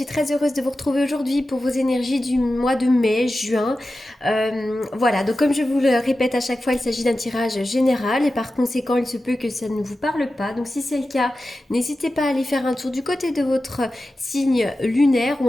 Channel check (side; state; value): both; normal; correlation 0.93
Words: très heureuse de vous retrouver aujourd'hui pour vos énergies du mois de mai, juin. Voilà, donc comme je vous le répète à chaque fois, il s'agit d'un tirage général et par conséquent, il se peut que ça ne vous parle pas. Donc si c'est le cas, n'hésitez pas à aller faire un tour du côté de votre signe lunaire ou